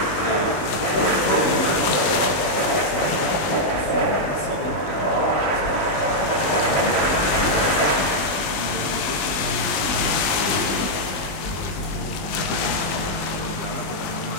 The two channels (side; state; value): right; late; 20 ms